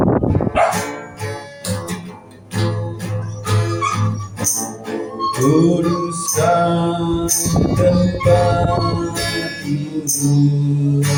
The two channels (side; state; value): both; identical; correlation 1.00